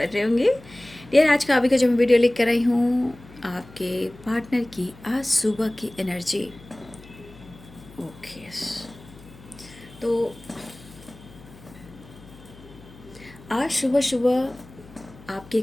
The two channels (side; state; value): left; noise; hum, 21 dB below the sound